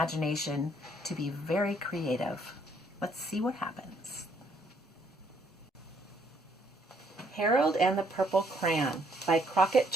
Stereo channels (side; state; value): both; normal; correlation 0.68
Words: to be very creative. Let's see what happens. Harold and the Purple Crayon by Crockett